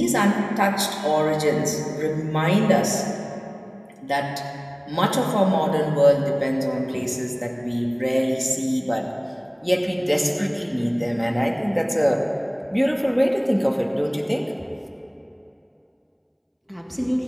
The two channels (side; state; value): both; identical; correlation 1.00